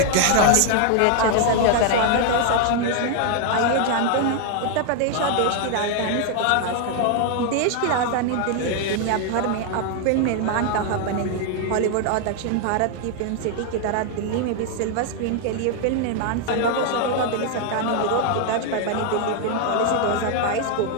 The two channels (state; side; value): different; both; correlation 0.00